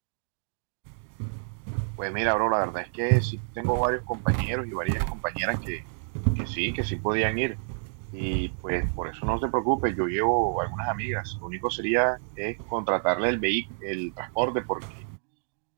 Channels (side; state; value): left; silent; digital silence